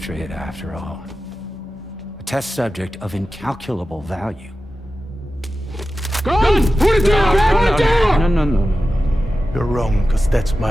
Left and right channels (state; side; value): normal; both; correlation 0.94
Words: after all. A test subject of incalculable value. Gun! Put it down! Put it down! No. You're wrong, because that's